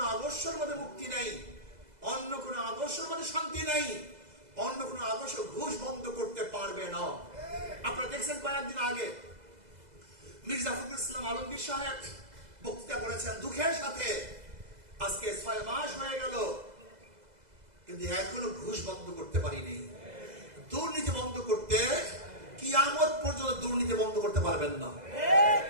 আদর্শের মধ্যে মুক্তি নাই, অন্য কোনো আদর্শের মধ্যে শান্তি নাই, অন্য কোনো আদর্শ ঘুষ বন্ধ করতে পারবে না। আপনারা দেখছেন কয়েকদিন আগে মির্জা ফখরুল ইসলাম আলমগীর সাহেব বক্তৃতা করেছেন দুঃখের সাথে। আজকে 6 মাস হয়ে গেল, কিন্তু এখনো ঘুষ বন্ধ করতে পারিনি। দুর্নীতি বন্ধ করতে কিয়ামত পর্যন্ত দুর্নীতি বন্ধ করতে পারবেন না,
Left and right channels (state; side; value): late; left; 2.0 ms